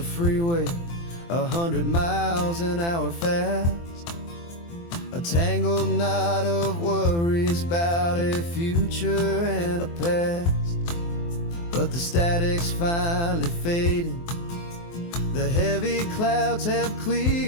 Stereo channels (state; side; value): late; right; 23 ms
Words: freeway, 100 miles an hour fast, a tangled knot of worries about a future and a past. But the static's finally fading, the heavy clouds have